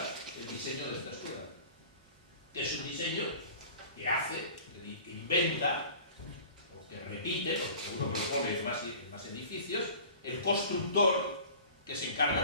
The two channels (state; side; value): inverted; both; correlation -0.43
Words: el diseño de esta escuela, que es un diseño que hace, que inventa, o que repite, porque seguro que lo pone en más edificios, el constructor que se